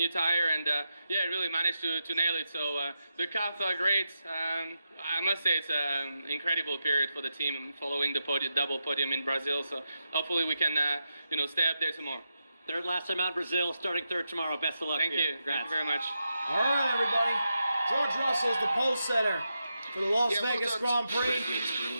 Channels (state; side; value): inverted; both; correlation -0.87